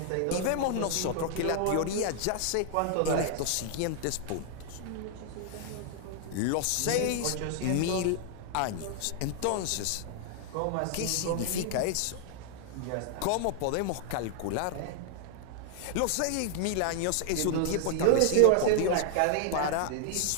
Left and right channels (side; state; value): both; different; correlation 0.00